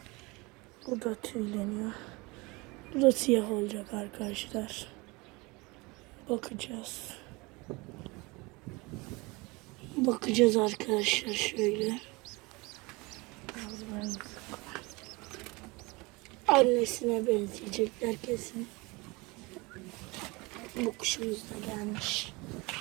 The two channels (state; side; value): quieter; left; 25.1 dB